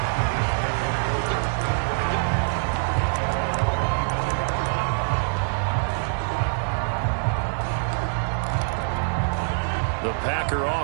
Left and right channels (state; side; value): silent; left; 62 dB below the other